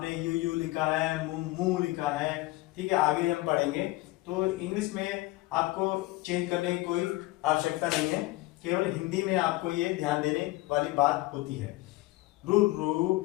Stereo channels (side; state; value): right; quieter; 19.4 dB